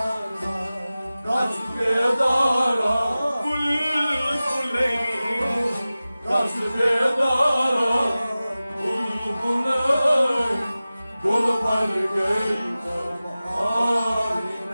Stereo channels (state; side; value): inverted; both; correlation -0.96